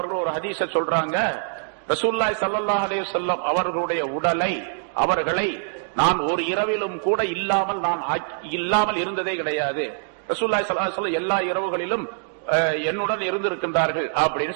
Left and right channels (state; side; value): silent; left; digital silence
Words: ஒரு ஹதீஸை சொல்றாங்க, ரசூலுல்லாஹி ஸல்லல்லாஹு அலைஹி வஸல்லம் அவர்களுடைய அவர்களை நான் ஒரு இரவிலும் கூட இல்லாமல் இருந்ததே கிடையாது. ரசூலுல்லாஹி ஸல்லல்லாஹு அலைஹி வஸல்லம் எல்லா இரவுகளிலும் என்னுடன் இருந்திருக்கின்றார்கள் அப்படின்னு